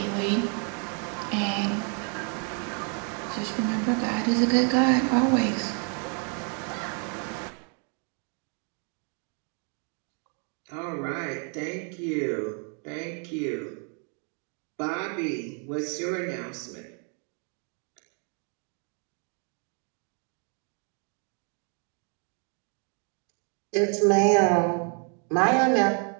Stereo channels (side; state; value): left; quieter; 39.9 dB